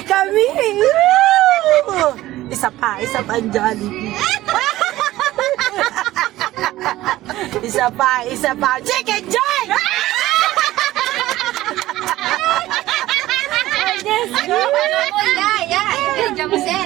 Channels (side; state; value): left; quieter; 16.0 dB